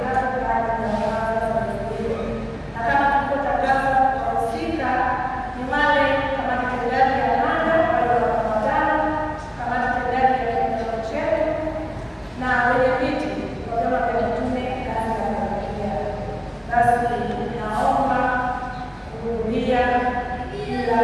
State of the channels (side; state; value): both; identical; correlation 1.00